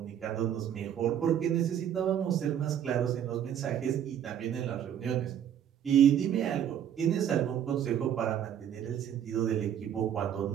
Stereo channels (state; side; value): quieter; left; 9.7 dB